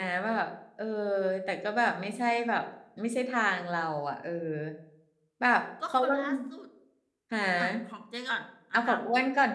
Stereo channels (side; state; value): both; identical; correlation 1.00